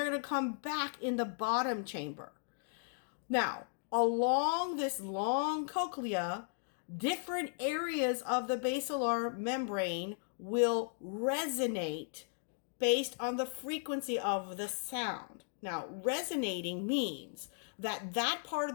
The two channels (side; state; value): right; silent; digital silence